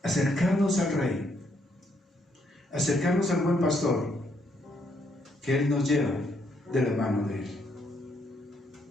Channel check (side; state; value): both; normal; correlation 0.73